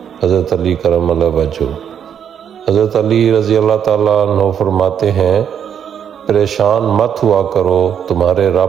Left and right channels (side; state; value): left; quieter; 8.5 dB